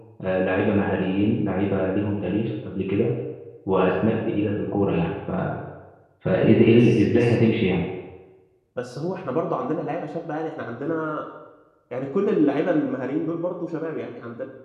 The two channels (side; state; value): both; identical; correlation 1.00